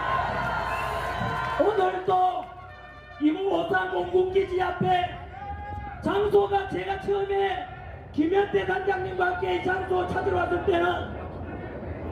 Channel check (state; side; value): identical; both; correlation 1.00